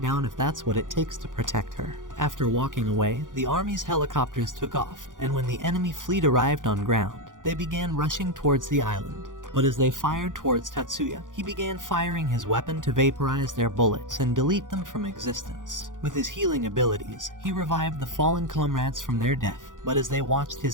down if that's what it takes to protect her. After walking away, the army's helicopters took off, and when the enemy fleet arrived on ground, they began rushing towards the island. But as they fired towards Tatsuya, he began firing his weapon to vaporize their bullets and delete them from existence. With his healing abilities, he revived the fallen comrades from their death. But as they watched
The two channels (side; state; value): left; late; 0.88 ms